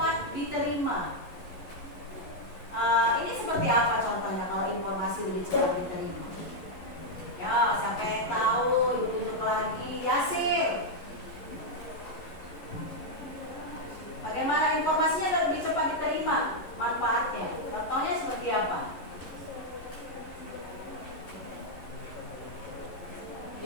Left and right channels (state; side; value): late; right; 11 ms